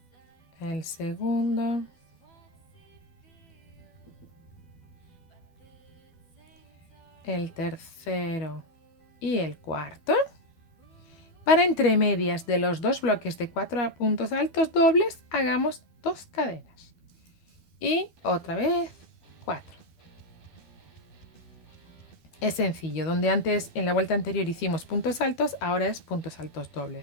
el segundo, el tercero y el cuarto. Para entre medias de los 2 bloques de 4 puntos altos dobles, hagamos 2 cadenas. Y otra vez 4. Es sencillo, donde antes en la vuelta anterior hicimos puntos altos, ahora es puntos altos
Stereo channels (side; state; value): right; late; 13 ms